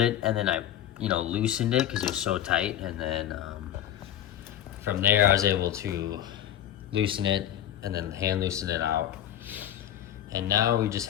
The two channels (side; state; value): right; quieter; 11.2 dB